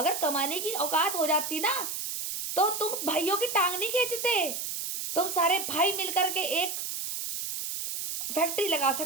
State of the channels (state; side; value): noise; right; hiss, 4 dB below the sound